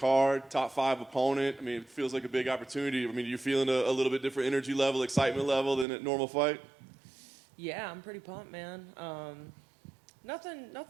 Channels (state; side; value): drops out; left; at 5.9 s